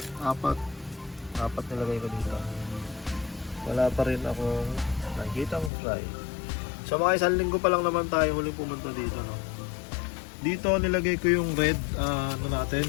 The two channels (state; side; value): drops out; right; at 5.7 s